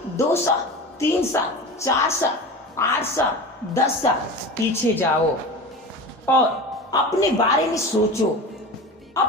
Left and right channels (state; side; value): normal; both; correlation 0.31